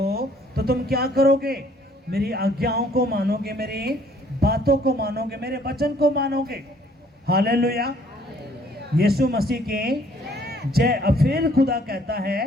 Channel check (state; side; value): normal; both; correlation 0.61